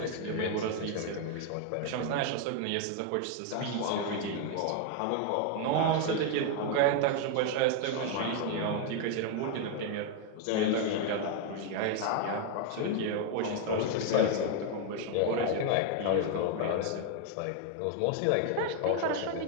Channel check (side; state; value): both; different; correlation 0.01